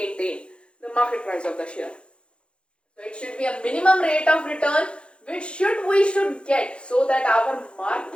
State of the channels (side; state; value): right; late; 0.057 ms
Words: the market price of the share. So it should be a minimum rate of return which we should get so that our